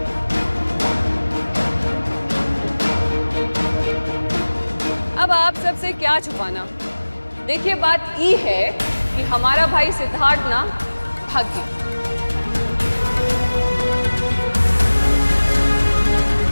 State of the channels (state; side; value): inverted; both; correlation -1.00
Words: अब आप सबसे क्या छुपाना। देखिए बात ये है कि हमारा भाई सिद्धार्थ ना भाग गया।